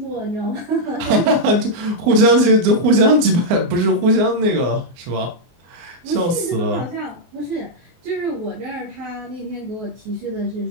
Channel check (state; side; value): late; left; 24 ms